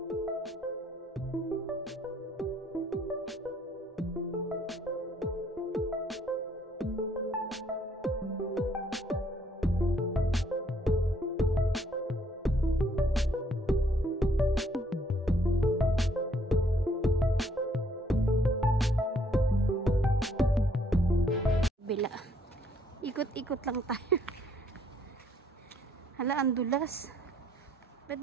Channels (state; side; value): normal; both; correlation 0.66